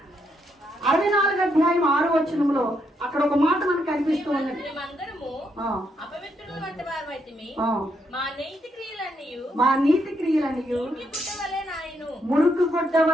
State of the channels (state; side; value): normal; both; correlation 0.77